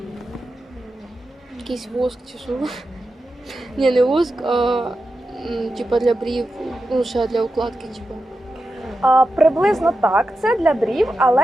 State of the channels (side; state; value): both; normal; correlation 0.90